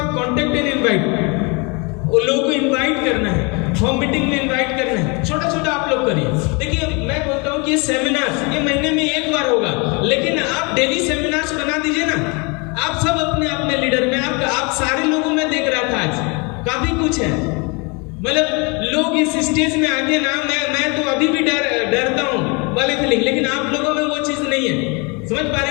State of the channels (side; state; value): right; quieter; 30.6 dB